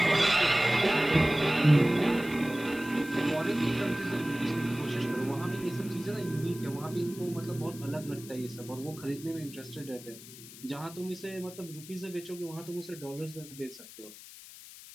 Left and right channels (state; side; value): noise; left; hiss, 16 dB below the sound